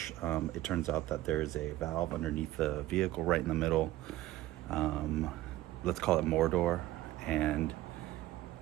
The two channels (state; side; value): quieter; left; 16.0 dB